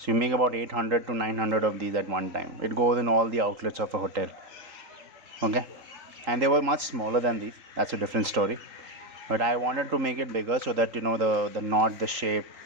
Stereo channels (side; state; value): left; late; 3.8 ms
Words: you make about 800 to 900 of these at one time. It goes in all the outlets of a hotel. Okay, and they were much smaller than these. That's a different story. But I wanted to make it bigger so that the knot, the shape,